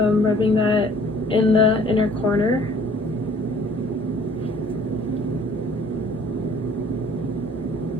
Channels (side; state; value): both; normal; correlation 0.54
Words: rubbing that in the inner corner.